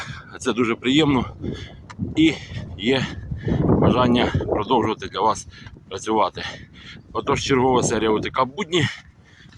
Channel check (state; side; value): identical; both; correlation 1.00